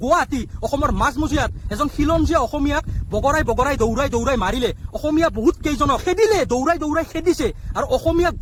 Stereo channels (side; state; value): both; identical; correlation 1.00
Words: গুৱাহাটী অসমৰ মাজমজিয়াত এজন খিলঞ্জীয়া অসমীয়াক বগৰাই দৌৰাই মাৰিলে। অসমীয়া বহুত কেইজনক খেদিলে, দৌৰাই খেদিছে আৰু অসমীয়া